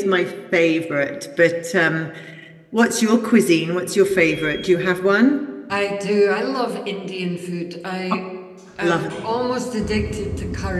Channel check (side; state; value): both; identical; correlation 1.00